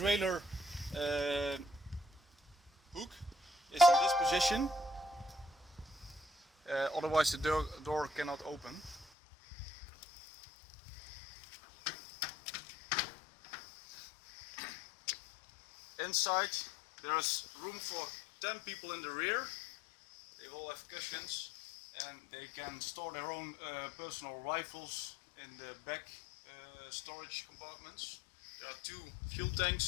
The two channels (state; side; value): drops out; right; at 9.1 s